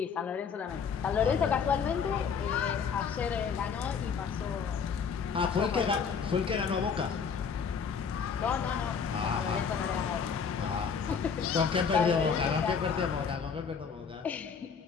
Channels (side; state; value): right; quieter; 6.3 dB